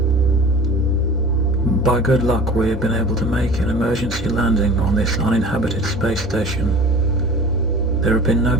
By good luck, we have been able to make an emergency landing on this uninhabited space station. There have been no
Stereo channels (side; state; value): both; normal; correlation 0.41